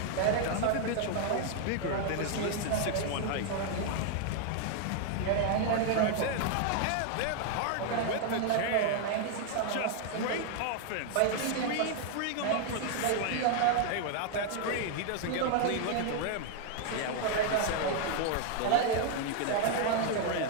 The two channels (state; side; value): different; both; correlation 0.00